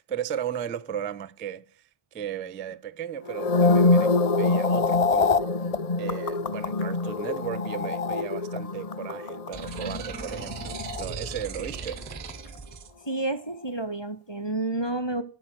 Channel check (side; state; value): right; late; 1.7 ms